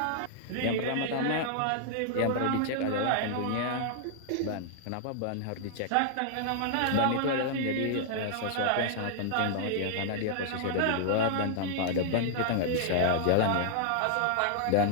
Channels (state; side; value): different; both; correlation -0.01